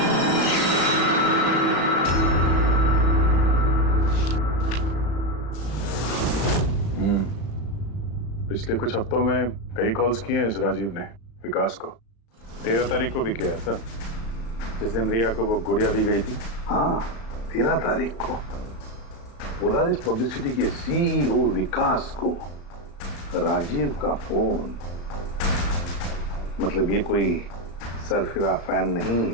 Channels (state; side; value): late; right; 35 ms